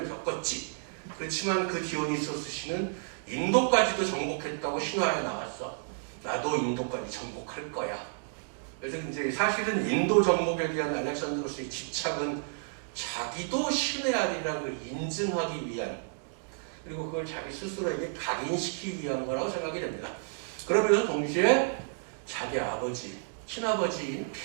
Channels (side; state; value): left; silent; digital silence